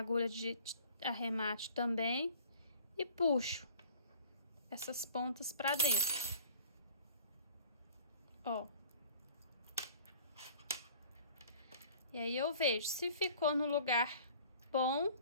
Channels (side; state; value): both; inverted; correlation -0.49